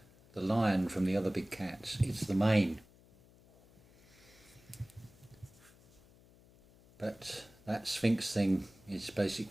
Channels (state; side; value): noise; left; hum, 26 dB below the sound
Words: the lion from the other big cats? It's the mane. But that Sphinx thing is